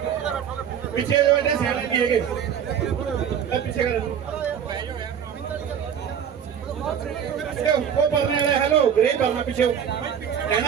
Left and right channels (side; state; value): left; quieter; 8.4 dB